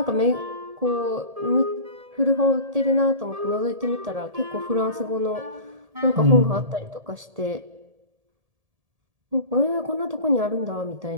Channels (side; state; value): left; late; 1.7 ms